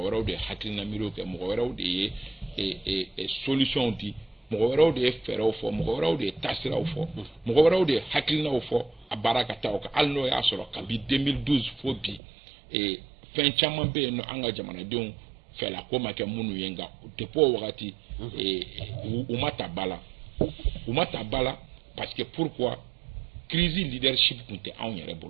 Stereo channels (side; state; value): left; drops out; at 12.2 s